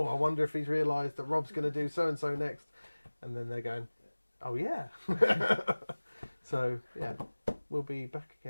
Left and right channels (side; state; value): both; inverted; correlation -1.00